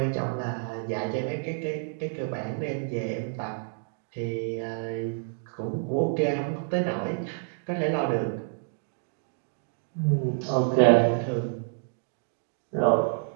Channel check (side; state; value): left; silent; digital silence